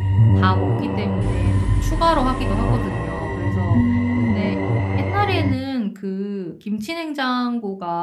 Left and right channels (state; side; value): identical; both; correlation 1.00